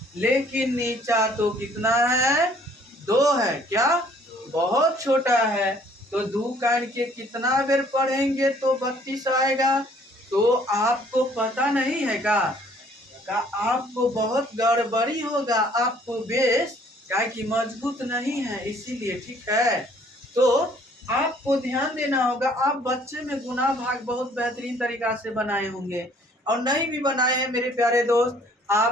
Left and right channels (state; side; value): normal; both; correlation 0.59